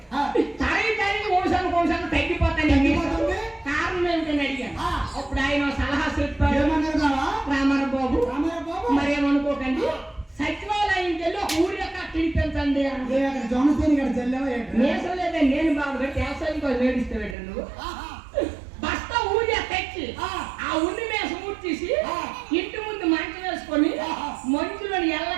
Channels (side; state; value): left; drops out; at 17.4 s